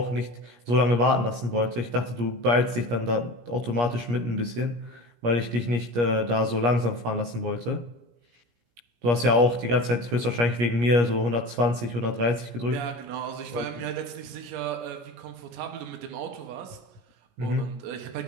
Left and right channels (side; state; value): left; late; 17 ms